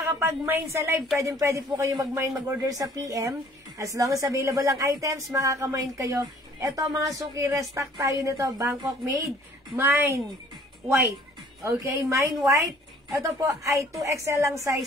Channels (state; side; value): normal; both; correlation 0.55